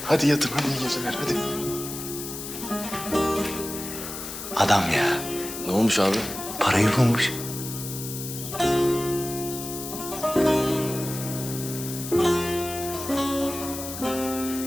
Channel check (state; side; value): noise; left; hiss, 8 dB below the sound